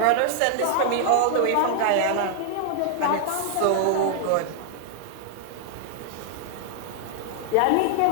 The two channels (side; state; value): both; different; correlation 0.00